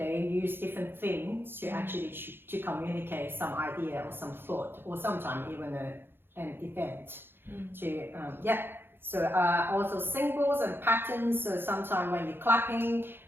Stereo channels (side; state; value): left; late; 0.10 ms